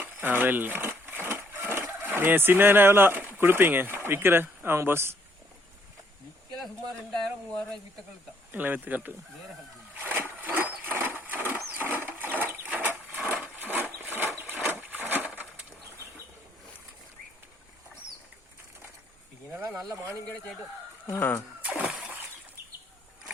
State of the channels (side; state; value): both; normal; correlation 0.67